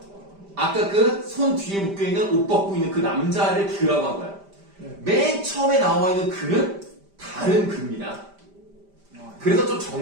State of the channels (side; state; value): left; late; 5.0 ms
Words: 아까 그 손 뒤에 묶여있는 옷 벗고 있는 그 남자를 그라고 한 거야. 맨 처음에 나와 있는 그는 다른 그입니다. 그래서 좀